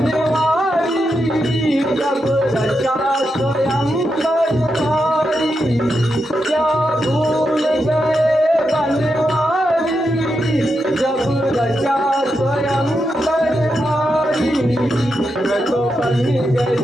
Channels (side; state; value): both; normal; correlation 0.85